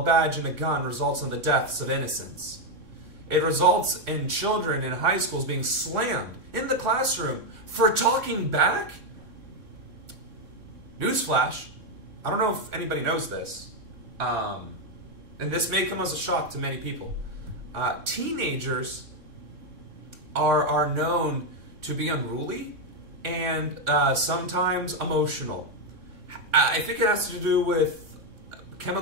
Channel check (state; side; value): late; left; 3.6 ms